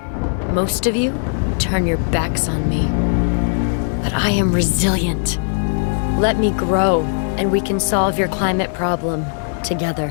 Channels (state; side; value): silent; right; 67 dB below the other